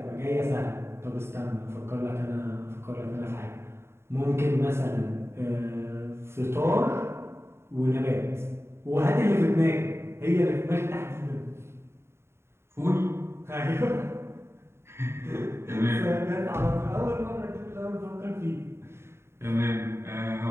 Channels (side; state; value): left; late; 0.12 ms